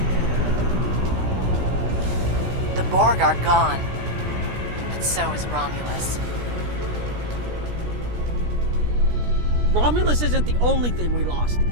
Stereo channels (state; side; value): late; left; 17 ms